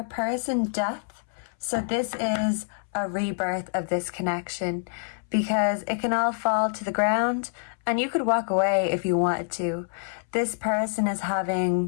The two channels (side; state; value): right; silent; 61 dB below the other